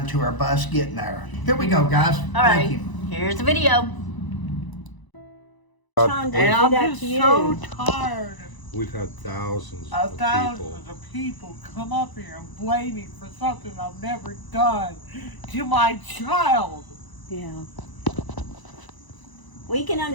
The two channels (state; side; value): late; right; 1.0 ms